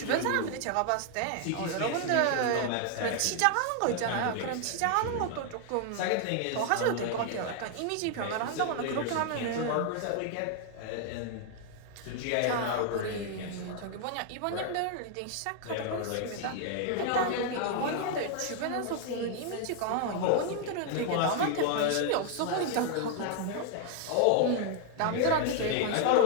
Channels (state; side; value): different; both; correlation 0.00